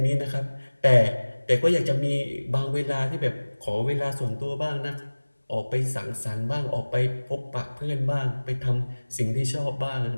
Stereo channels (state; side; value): inverted; both; correlation -1.00